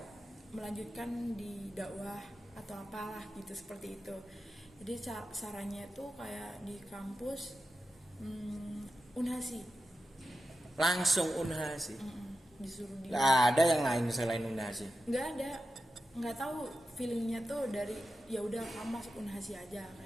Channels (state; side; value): normal; both; correlation 0.91